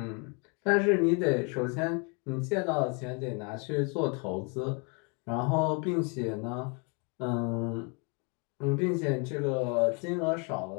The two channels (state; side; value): quieter; right; 34.6 dB